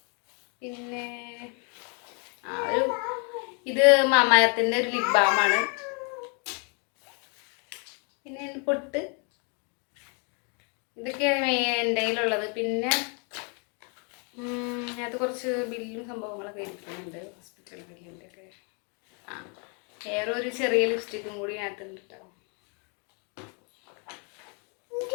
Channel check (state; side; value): quieter; right; 37.0 dB